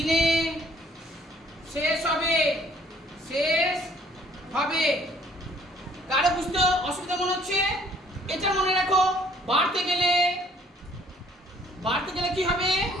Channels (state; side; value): normal; both; correlation 0.60